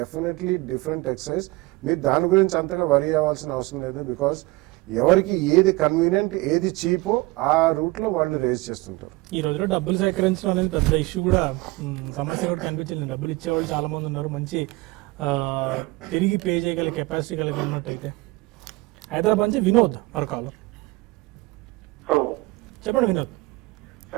different exercise. మీరు దాని గురించి అంతగా వరి అవ్వాల్సిన అవసరం లేదు. బికాస్ ఎవరికి ఏది కన్వీనియంట్ ఏది చీపో ఆ రూట్లో వాళ్ళు రేజ్ చేస్తుంటారు. ఈ రోజులో డబ్బులు సేకరించడం అనేది పెద్ద ఇష్యూ కూడా, సమస్య కూడా కనిపించింది. డబ్బులు ఇచ్చేవాళ్ళు చాలా మంది ఉన్నారు, మంచి తిరిగి పే చేయగల కెపాసిటీ కలిగి ఉన్నట్టయితే. హైదరాబాద్ నుంచి వినోద్ మరొక చెప్పండి వినోద్.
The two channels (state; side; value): quieter; left; 22.4 dB